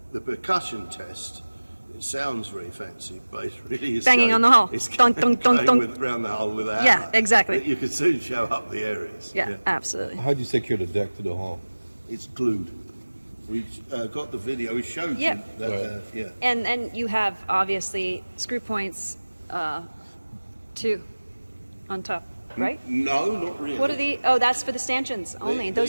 The percussion test, it sounds very fancy, but it really is Banging on the hull. It's Dunk, dunk, dunk, going dunk. around the hull with a hammer. Yeah, exactly. You can soon show up the areas. Yeah, absolutely. How do you secure the deck to the hull? It's glued. We've got the video. We showed Yeah. you that. Yeah. And you have obviously screw points, 2 on top. right? No, not really. What are the? Oh, that's for the stanchions only.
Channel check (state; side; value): inverted; both; correlation -1.00